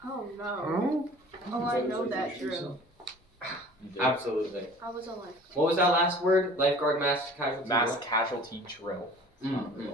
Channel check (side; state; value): both; normal; correlation 0.46